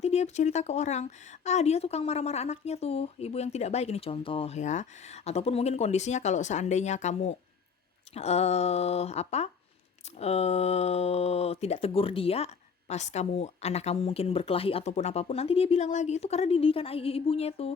dia cerita ke orang, dia tukang marah-marah anaknya tuh, ibu yang tidak baik. Ini contoh ya. Ataupun mungkin kondisinya kalau seandainya kamu apa tidak tegur dia, pas anak kamu mungkin berkelahi ataupun apapun, nanti dia bilang lagi itu karena didikan ibunya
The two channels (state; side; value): quieter; right; 5.9 dB